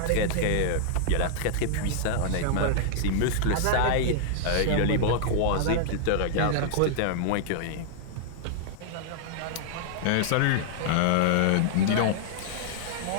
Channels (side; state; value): both; different; correlation -0.01